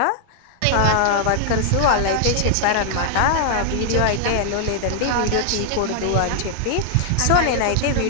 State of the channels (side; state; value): both; different; correlation 0.00